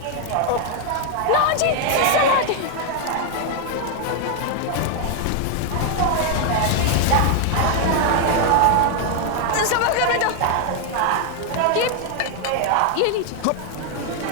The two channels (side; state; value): both; different; correlation 0.00